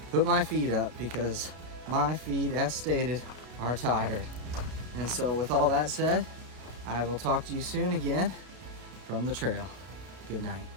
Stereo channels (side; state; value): left; late; 32 ms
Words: put my feet up, because my feet, as stated, are tired. And so with all that said, I will talk to you soon again from the trail. Good night.